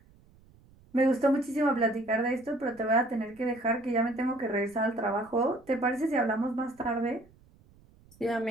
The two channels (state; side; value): noise; right; rumble, 28 dB below the sound